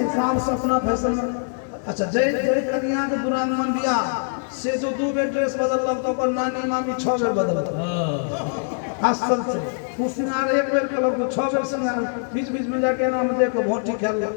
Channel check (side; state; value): right; silent; digital silence